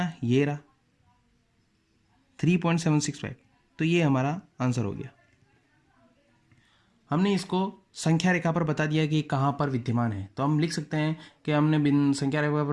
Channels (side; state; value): both; identical; correlation 1.00